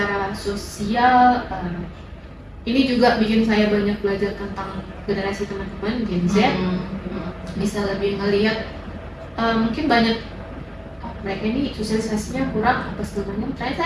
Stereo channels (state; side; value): identical; both; correlation 1.00